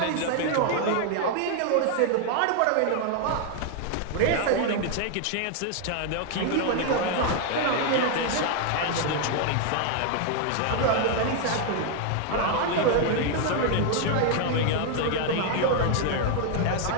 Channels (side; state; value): both; different; correlation 0.00